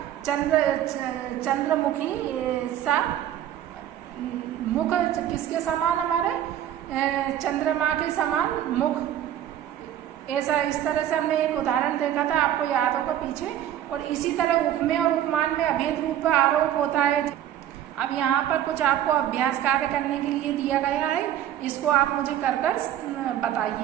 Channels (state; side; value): quieter; left; 11.4 dB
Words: चंद्रमुखी सा मुख किसके समान, हमारे चंद्रमा के समान मुख, ऐसा इस तरह से हमने एक उदाहरण देखा था, आपको याद होगा पीछे। और इसी तरह उपमेय और उपमान में अभेद रूप आरोप होता है। अब यहाँ पर कुछ आपको अभ्यास कार्य करने के लिए दिया गया है, इसको आप मुझे कर